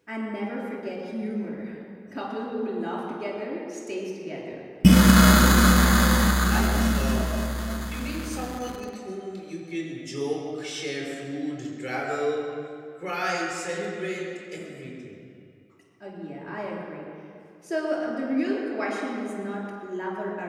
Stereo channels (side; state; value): both; identical; correlation 1.00